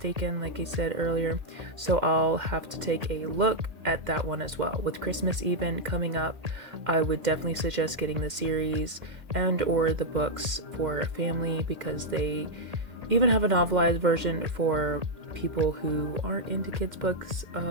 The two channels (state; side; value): late; left; 2.1 ms